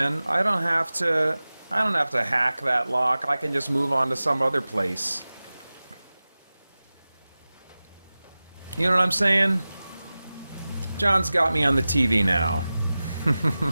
I don't have to hack that lock. I can just move on to some other place. You know what I'm saying? John's got me on the TV now.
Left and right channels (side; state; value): both; inverted; correlation -0.97